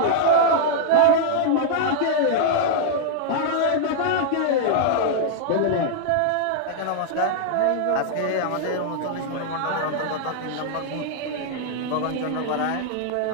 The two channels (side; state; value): both; different; correlation -0.01